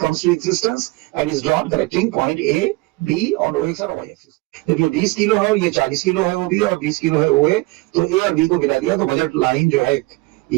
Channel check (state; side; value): quieter; left; 22.5 dB